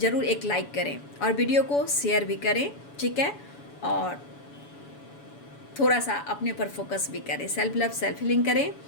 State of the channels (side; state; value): right; late; 7.0 ms